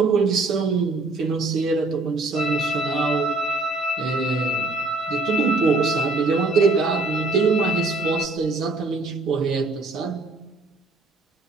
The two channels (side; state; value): left; quieter; 3.2 dB